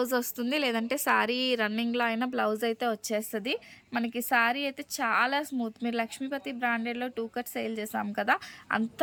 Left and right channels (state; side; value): identical; both; correlation 1.00